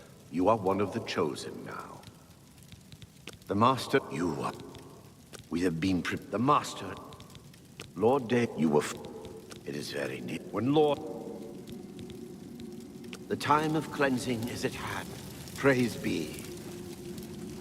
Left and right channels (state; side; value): identical; both; correlation 1.00